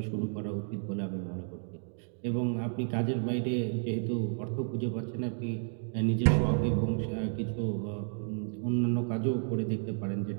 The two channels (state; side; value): silent; left; 57 dB below the other